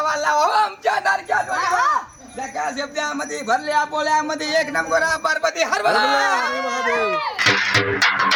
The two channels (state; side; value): identical; both; correlation 1.00